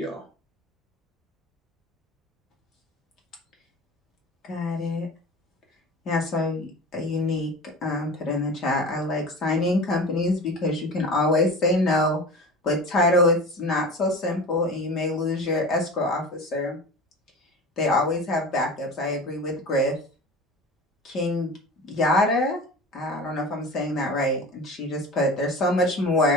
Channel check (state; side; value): normal; both; correlation 0.34